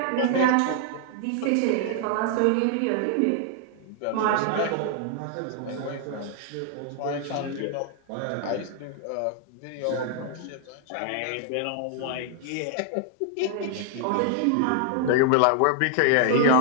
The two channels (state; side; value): different; both; correlation 0.00